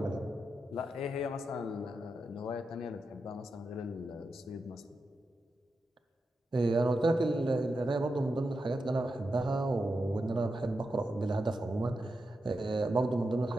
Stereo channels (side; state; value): both; normal; correlation 0.88